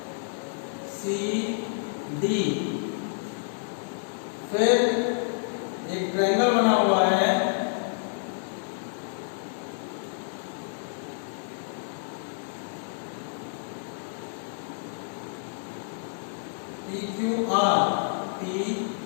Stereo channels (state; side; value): silent; right; digital silence